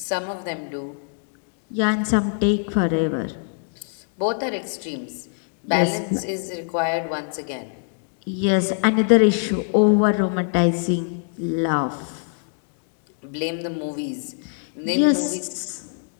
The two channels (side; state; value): right; silent; 63 dB below the other